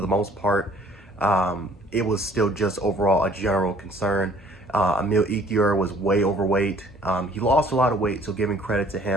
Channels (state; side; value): normal; both; correlation 0.56